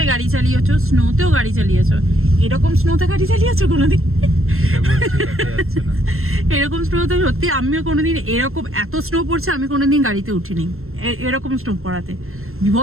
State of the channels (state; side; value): late; left; 0.62 ms